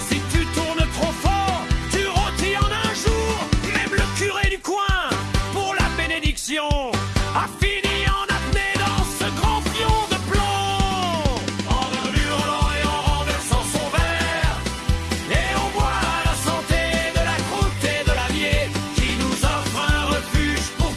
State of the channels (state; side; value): identical; both; correlation 1.00